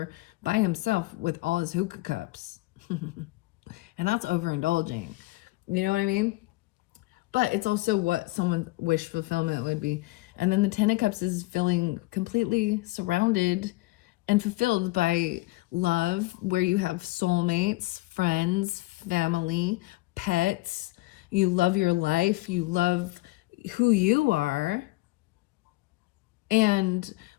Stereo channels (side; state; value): right; quieter; 20.9 dB